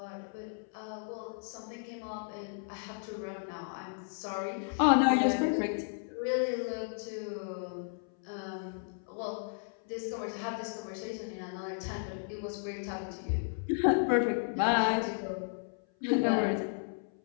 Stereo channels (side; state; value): right; silent; 55 dB below the other